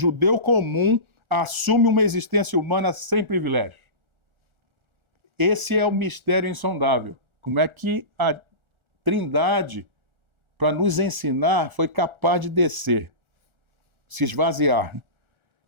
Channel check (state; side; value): late; left; 1.4 ms